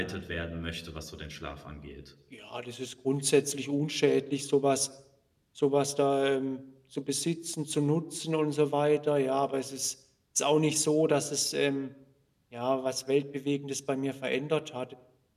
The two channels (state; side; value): identical; both; correlation 1.00